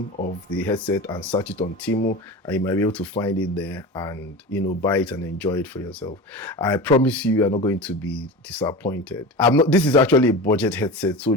of the headset and search it on Temu, and you might be able to find it there and buy it and enjoy it for yourself. I promise you are not going to be disappointed. This is actually a budget headset, so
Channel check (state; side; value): normal; both; correlation 0.29